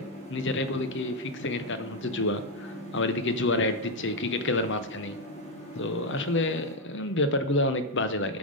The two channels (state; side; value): normal; both; correlation 0.03